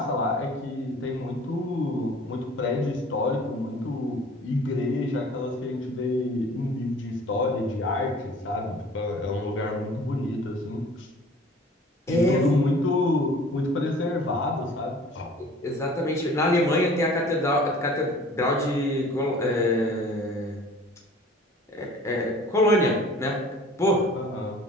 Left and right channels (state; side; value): normal; both; correlation 0.48